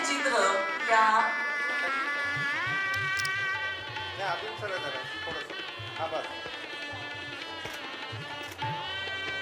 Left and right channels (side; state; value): both; identical; correlation 1.00